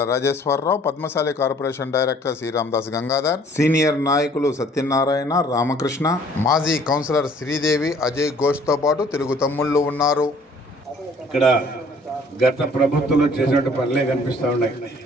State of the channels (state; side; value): normal; both; correlation 0.56